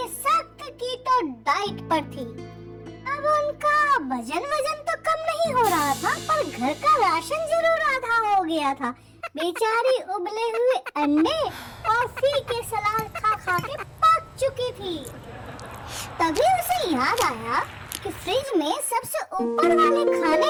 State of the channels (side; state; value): both; identical; correlation 1.00